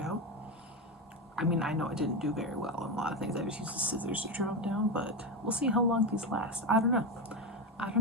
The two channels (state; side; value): normal; both; correlation 0.16